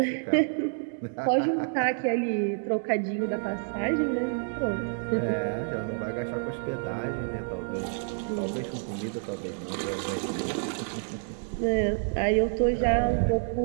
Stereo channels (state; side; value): silent; left; digital silence